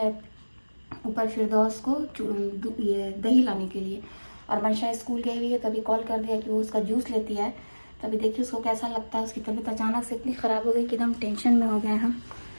ऊपर फिरदौस को ये दही लाने के लिए। और मंशा स्कूल गई हुई है तो अभी कॉल कर दिया कि वो उसका जूस लेती है। तो अभी देखिए उसको कैसा लगता है। उसकी तबीयत अचानक से इतनी ख़राब हो गई कि एकदम टेंशन में हो गए हम।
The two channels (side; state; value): both; inverted; correlation -1.00